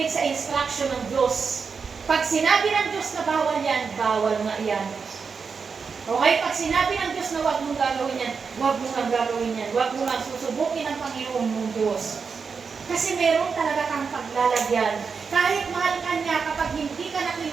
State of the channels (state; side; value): quieter; left; 5.5 dB